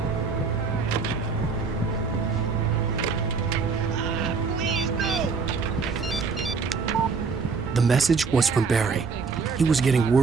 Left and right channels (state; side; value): quieter; left; 4.9 dB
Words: The message was from Barry. He was getting